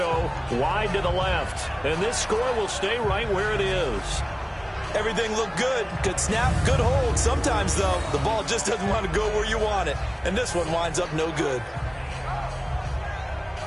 wide to the left. And this score will stay right where it is. Everything looked good. Good snap, good hold. Sometimes, though, the ball just doesn't want to go where you want it. And this one winds up no good.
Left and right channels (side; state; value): both; identical; correlation 1.00